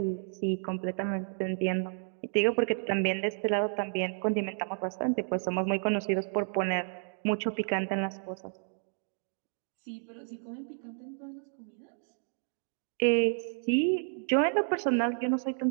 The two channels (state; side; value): silent; left; 57 dB below the other